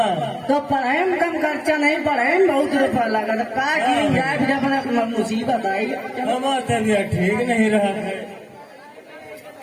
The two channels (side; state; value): both; identical; correlation 1.00